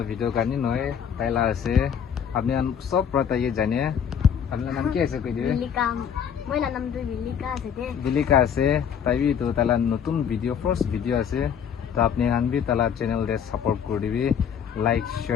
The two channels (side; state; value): right; quieter; 7.9 dB